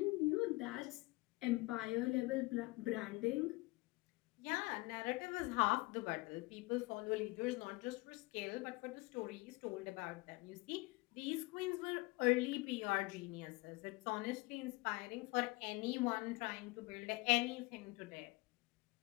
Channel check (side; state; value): right; quieter; 23.5 dB